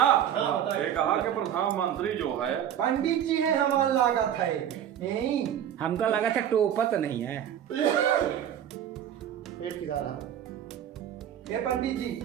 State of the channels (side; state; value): left; quieter; 10.0 dB